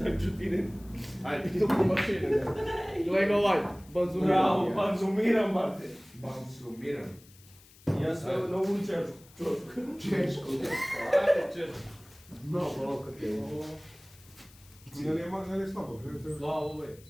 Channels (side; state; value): left; noise; hiss, 25 dB below the sound